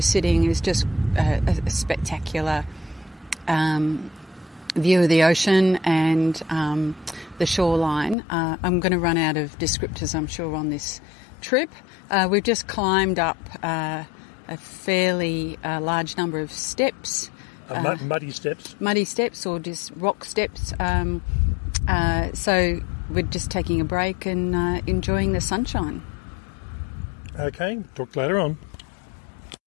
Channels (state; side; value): drops out; right; at 8.2 s